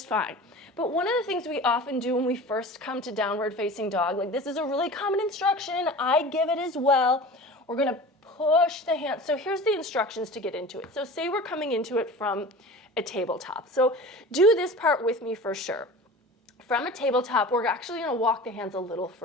fine. But one of the things we often do when we first come to downward facing dog, like this is a really common instruction, I give it as well. We're gonna push the hands. So here's the instructions to get into it. So say we're coming into it from a tabletop. So do this part with me for sure. From a tabletop, we're actually gonna walk the hands a little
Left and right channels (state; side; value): normal; both; correlation 0.37